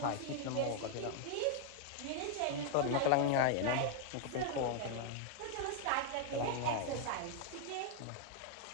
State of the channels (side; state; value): both; different; correlation 0.00